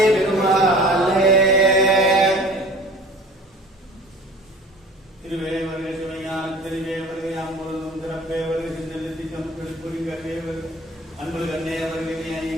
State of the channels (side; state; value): both; normal; correlation 0.43